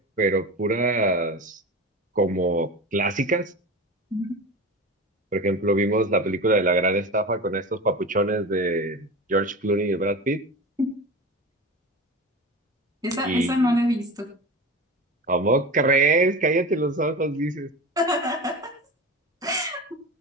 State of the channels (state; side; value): normal; both; correlation 0.29